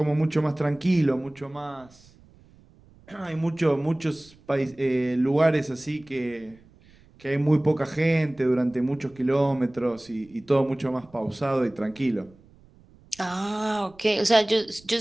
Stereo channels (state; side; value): noise; right; rumble, 27 dB below the sound